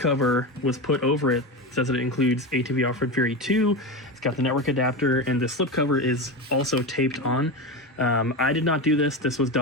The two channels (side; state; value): both; normal; correlation 0.20